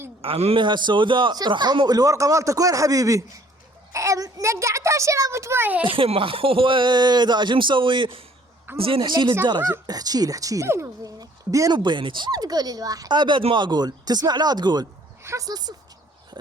عمي هالسوداء رحموا الورقة مالتك وين حبيبي؟ نقعتها شربت مويه. ما هو ده شو مسوي؟ زين احكي لي الدرجة، احكي لي بيني وبينك. مو تقولي الواحد. ابد ما اقول، تسمع لا تقول. حصل صفر.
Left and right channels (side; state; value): both; normal; correlation 0.58